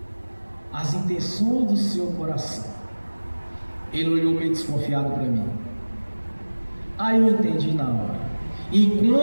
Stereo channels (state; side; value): inverted; both; correlation -1.00